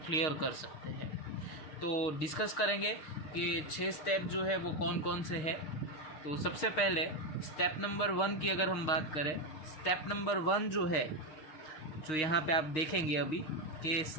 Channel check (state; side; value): late; right; 6.6 ms